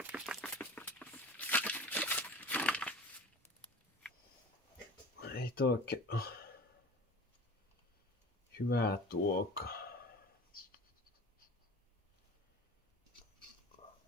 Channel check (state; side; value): normal; both; correlation 0.38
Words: toi oikein hyvää tuokaa.